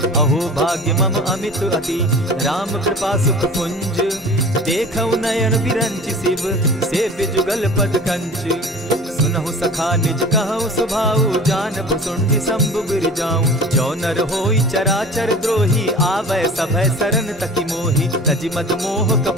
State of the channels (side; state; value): both; normal; correlation 0.40